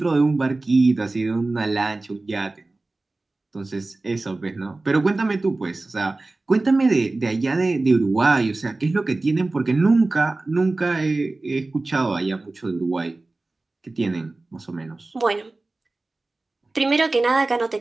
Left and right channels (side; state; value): left; quieter; 3.2 dB